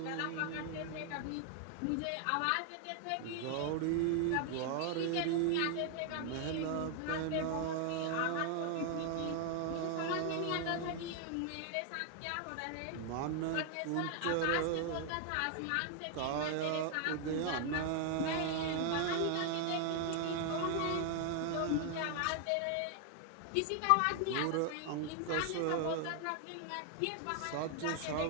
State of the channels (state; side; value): different; both; correlation 0.00